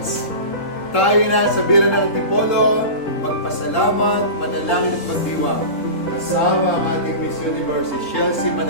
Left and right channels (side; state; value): right; late; 3.7 ms